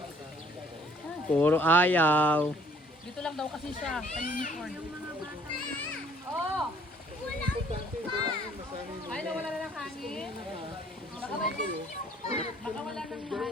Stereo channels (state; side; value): normal; both; correlation 0.60